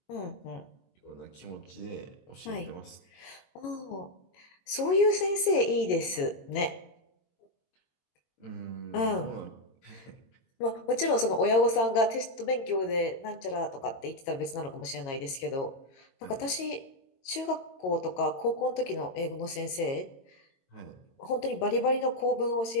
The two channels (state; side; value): late; right; 22 ms